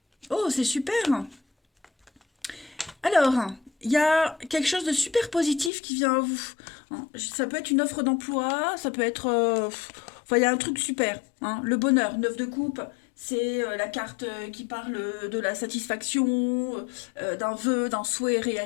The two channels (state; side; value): drops out; right; at 5.7 s